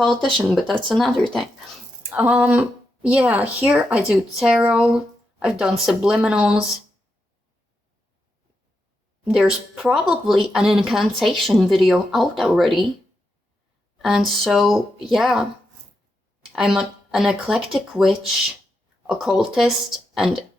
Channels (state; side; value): normal; both; correlation 0.85